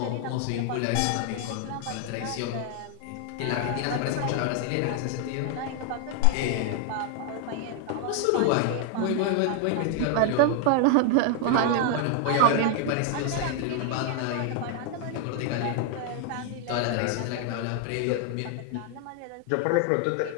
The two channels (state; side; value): different; both; correlation 0.00